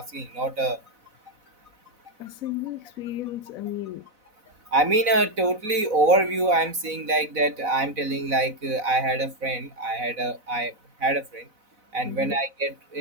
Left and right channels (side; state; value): left; late; 4.0 ms